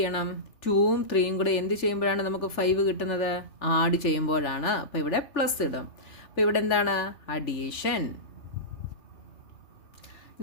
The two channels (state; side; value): late; right; 3.4 ms